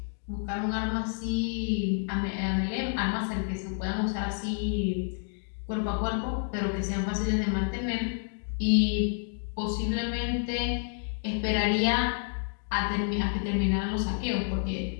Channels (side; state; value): right; silent; 56 dB below the other